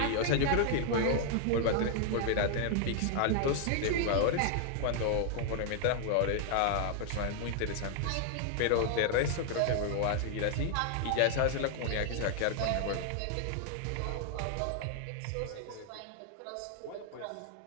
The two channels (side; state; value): both; different; correlation 0.00